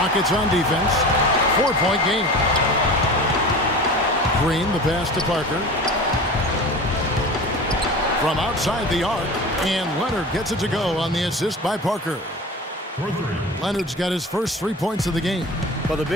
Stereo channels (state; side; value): normal; both; correlation 0.35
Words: Rockets on defense. 4-point game. Green, the pass to Parker. From outside the arc, and Leonard gets it to go on the assist by Parker. Leonard's got his first 3 points of the game. Well, the